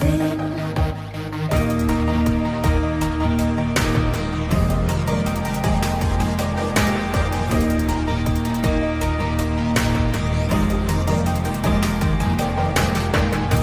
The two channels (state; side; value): identical; both; correlation 1.00